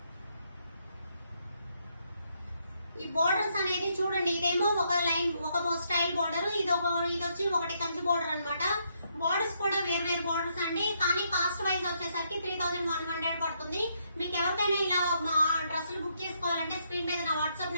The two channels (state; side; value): inverted; both; correlation -0.75